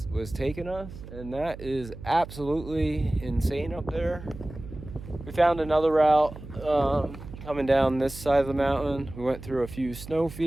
taking us, and that is absolutely insane up there. We found another route coming down this side of the mountain. We went through a few snow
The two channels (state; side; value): noise; right; hum, 14 dB below the sound